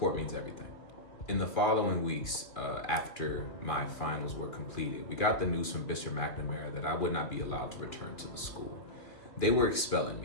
means everything. In the following weeks, after my finals were completed, we got the news from Bishop McNamara that I would not be allowed to return to the school. They were expelling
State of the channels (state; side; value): late; right; 2.4 ms